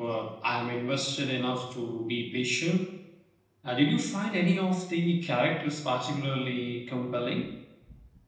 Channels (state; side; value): identical; both; correlation 1.00